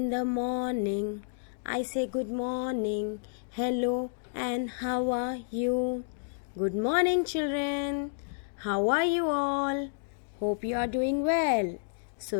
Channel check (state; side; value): silent; right; digital silence